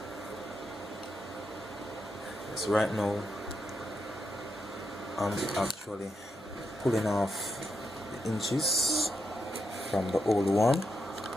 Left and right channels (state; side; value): normal; both; correlation 0.82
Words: yes, right now I'm actually pulling off the inches from the old one.